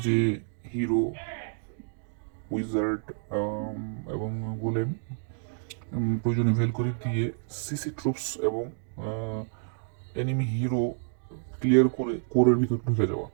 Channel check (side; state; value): left; silent; digital silence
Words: যে হিরো, উইজার্ড এবং গোলেম, প্রয়োজনে ভেলকরি দিয়ে সিসি ট্রুপস এবং এনিমি হিরো ক্লিয়ার করে কোরের ভিতর ঢুকে যাওয়া।